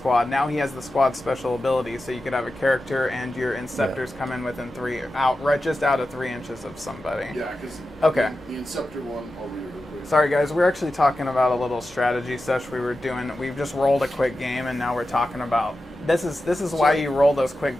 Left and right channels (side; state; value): both; normal; correlation 0.92